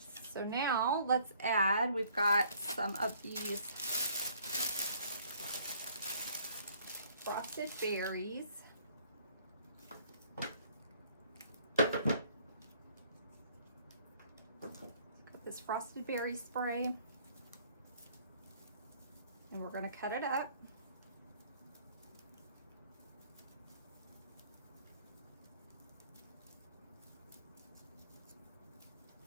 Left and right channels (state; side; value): inverted; both; correlation -0.60